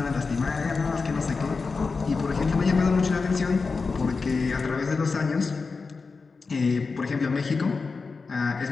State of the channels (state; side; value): quieter; right; 4.5 dB